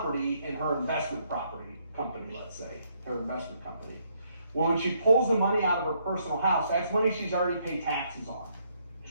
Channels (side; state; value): both; inverted; correlation -0.71